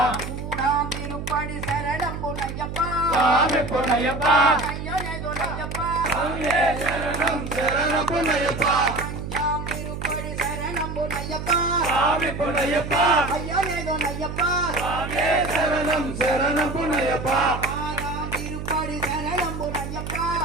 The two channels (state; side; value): noise; right; hum, 7 dB below the sound